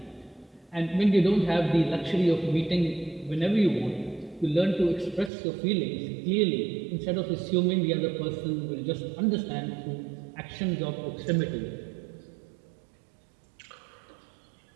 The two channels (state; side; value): drops out; left; at 5.3 s